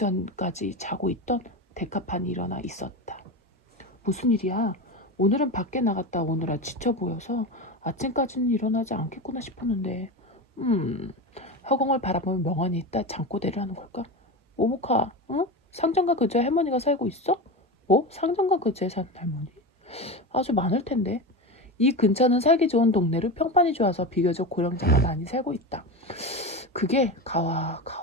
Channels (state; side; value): normal; both; correlation 0.22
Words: 자고 있던 데카판이 일어나 있었다. 무슨 일이야? 오늘은 밖에 나갔다 오느라 지쳐 보여서 아침까지는 일어나지 않겠구나 싶었는데 허공을 바라보며 멍하니 있다 잠꼬대를 하는 걸까? 모모카, 응? 상점가 근처에 할머니가 살고 있어? 뭐? 상점가 근처에 사는 할머니? 아주 많을 텐데. 이 근처는 살기 좋은 동네로 평판이 좋아서 비교적 고령자가 많이 살고 있다. 그게 가와